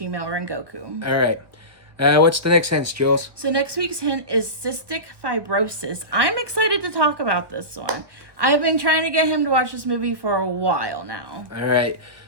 Rengoku. All right. What's the next hint, Jules? So next week's hint is cystic fibrosis. I'm excited to talk about this one. I've been trying to get him to watch this movie for a while now. All right.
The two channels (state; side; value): late; left; 1.2 ms